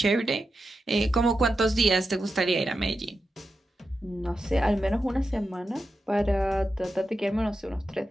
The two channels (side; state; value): both; normal; correlation 0.89